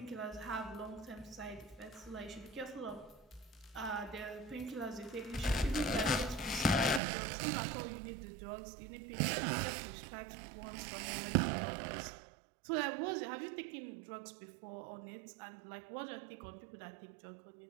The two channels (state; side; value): drops out; left; at 7.0 s